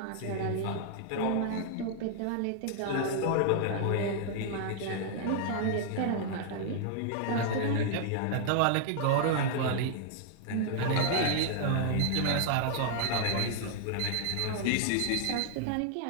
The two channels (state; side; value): different; both; correlation 0.00